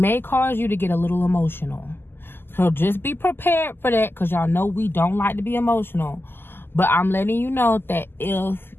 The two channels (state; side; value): late; right; 0.10 ms